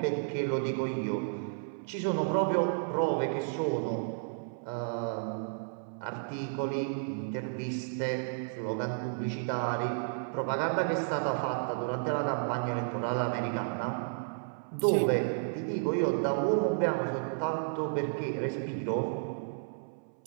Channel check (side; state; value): left; silent; 56 dB below the other